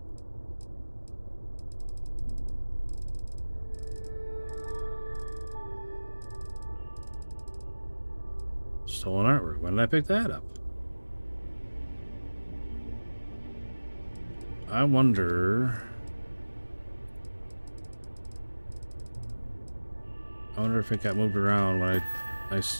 Stolen artwork. When did I pick that up? I wonder if it got moved around when I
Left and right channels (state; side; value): inverted; both; correlation -1.00